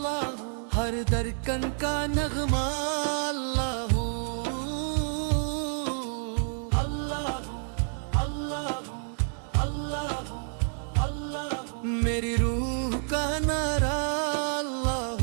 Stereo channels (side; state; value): left; silent; 59 dB below the other